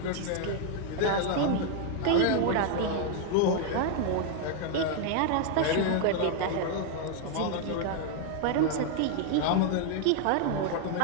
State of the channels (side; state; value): both; different; correlation 0.00